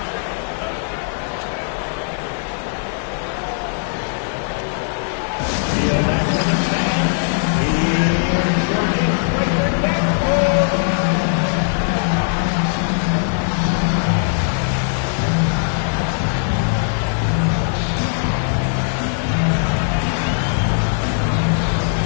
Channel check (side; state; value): right; silent; digital silence